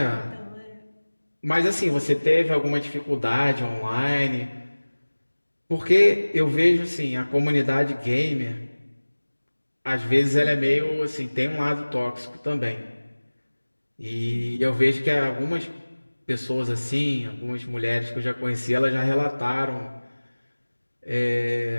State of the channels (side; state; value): both; inverted; correlation -1.00